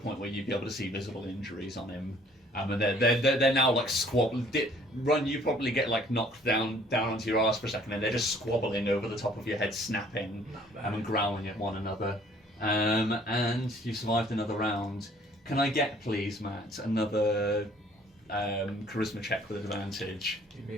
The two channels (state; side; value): normal; both; correlation 0.58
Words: where you'd be able to see visible injuries on him. And they're now like squabbling. Run, you probably get like knocked down onto your ass for a second, and they're just squabbling over the top of your head, snapping and growling at one another. And you survived another round. Can I get, please, Matt, another charisma check with advantage? It